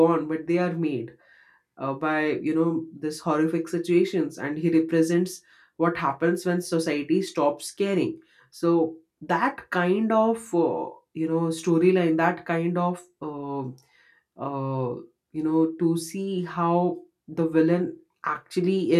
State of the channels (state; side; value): identical; both; correlation 1.00